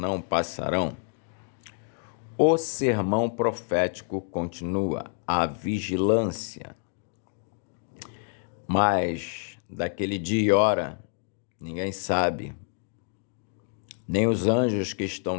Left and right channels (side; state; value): right; silent; 56 dB below the other